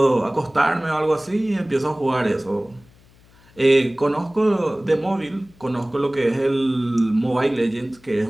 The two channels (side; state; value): left; noise; hum, 28 dB below the sound